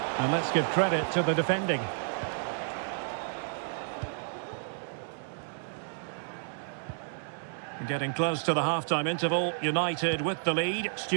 And let's give credit to the defending. Getting close to the half-time interval. United with the lead.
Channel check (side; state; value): left; silent; digital silence